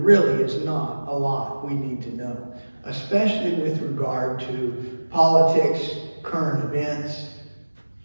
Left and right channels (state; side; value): inverted; both; correlation -1.00